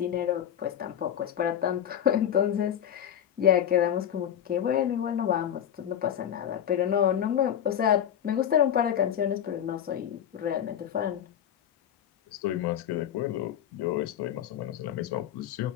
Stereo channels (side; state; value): right; quieter; 9.9 dB